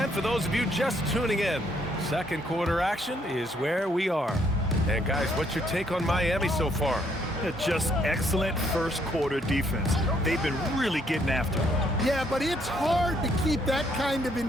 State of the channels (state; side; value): normal; both; correlation 0.69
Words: For those of you just tuning in, second quarter action is where we are. And guys, what's your take on Miami so far? Just excellent first quarter defense. They've been really getting after it. Yeah, but it's hard to keep that kind of